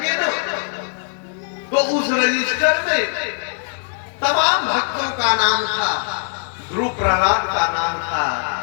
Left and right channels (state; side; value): silent; right; 62 dB below the other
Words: ना, तो उस रजिस्टर में तमाम भक्तों का नाम था। ध्रुव प्रहलाद का नाम था,